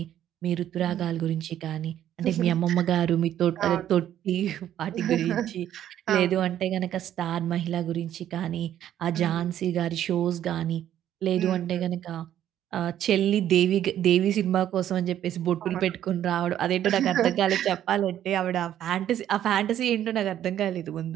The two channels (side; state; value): left; quieter; 11.2 dB